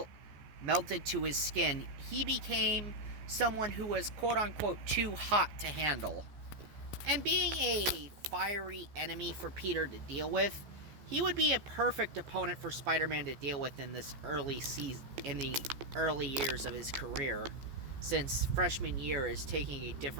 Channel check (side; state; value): left; late; 14 ms